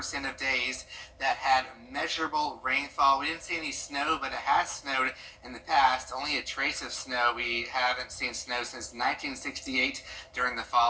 of days that had measurable rainfall. We didn't see any snow, but it has snowed in the past. Only a trace of snow. We haven't seen snow since 1968 during the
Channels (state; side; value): identical; both; correlation 1.00